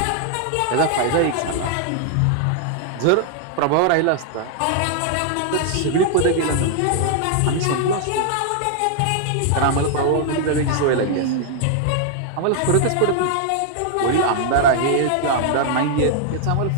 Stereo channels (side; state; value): both; different; correlation 0.00